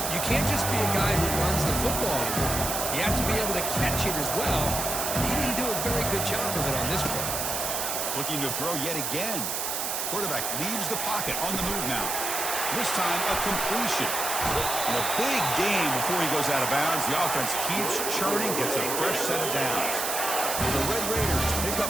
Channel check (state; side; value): noise; right; hiss, 1 dB below the sound